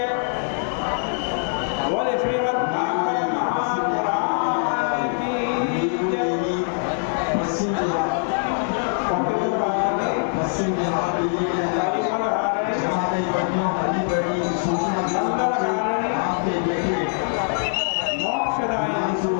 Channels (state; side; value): silent; right; digital silence